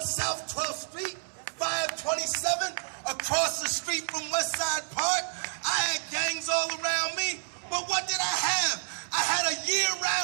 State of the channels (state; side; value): silent; left; 58 dB below the other